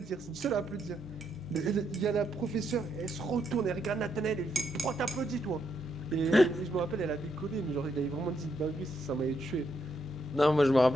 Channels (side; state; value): both; normal; correlation 0.78